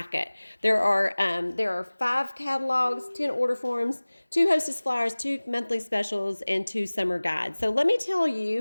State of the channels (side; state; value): both; inverted; correlation -1.00